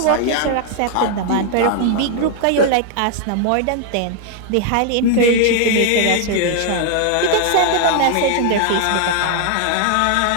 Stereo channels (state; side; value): different; both; correlation 0.00